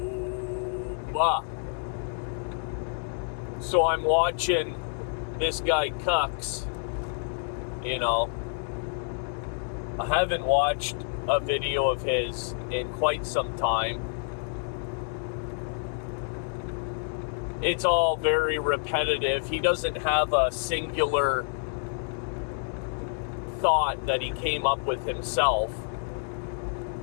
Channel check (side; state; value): right; silent; digital silence